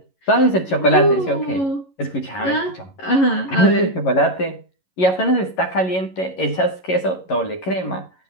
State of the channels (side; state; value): right; late; 11 ms